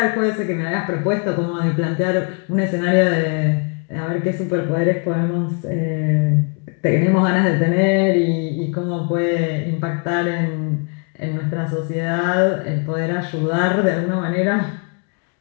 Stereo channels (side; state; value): right; quieter; 38.0 dB